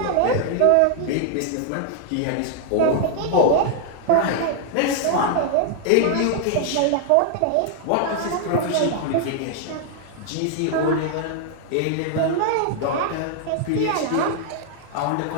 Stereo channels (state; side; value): different; both; correlation 0.00